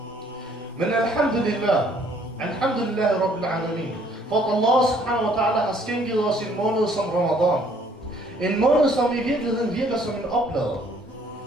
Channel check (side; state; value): both; normal; correlation 0.62